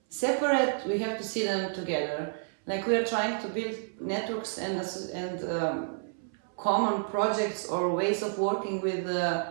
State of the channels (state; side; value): silent; left; 58 dB below the other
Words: separate, we have to see them together. Like we are trying to build networks and common projects or ways of working with